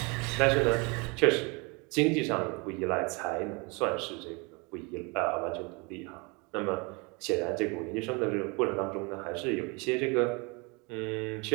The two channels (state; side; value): quieter; left; 29.5 dB